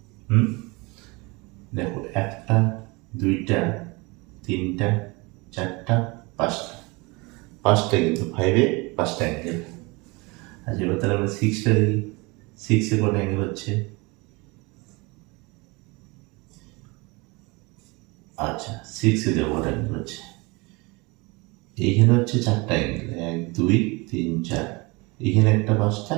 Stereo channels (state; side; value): quieter; left; 26.2 dB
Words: দেখো, একটা, দুইটা, তিনটা, চারটা, পাঁচটা কিন্তু ফাইভে পাঁচটা অ্যাঙ্গেল। আচ্ছা, এবার তাহলে আমরা সিক্সটা দেখি। সিক্সে কটা অ্যাঙ্গেল হচ্ছে? আচ্ছা, সিক্সে দেখো কটা অ্যাঙ্গেল হচ্ছে? এইখানে হচ্ছে চারটা অ্যাঙ্গেল, 1, 2, 3, 4। এখানে একটা পাঁচটা,